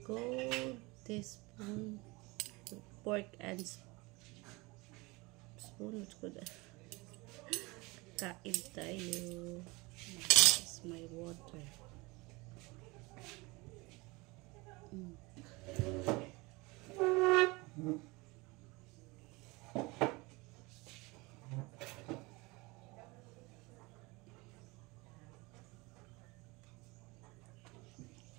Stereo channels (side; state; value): left; quieter; 24.5 dB